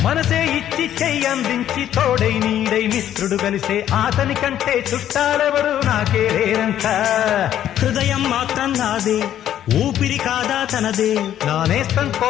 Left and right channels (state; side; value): quieter; right; 11.1 dB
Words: మనసే ఇచ్చి చెయ్యి అందించి తోడై నీడై మిత్రుడు కలిసే అతని కంటే చుట్టాలెవరు నాకే లేరంట హృదయం మాత్రం నాదే ఊపిరి కాదా తనదే నా నేస్తం